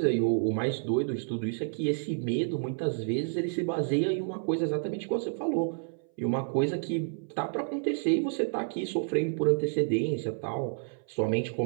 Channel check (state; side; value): silent; left; 58 dB below the other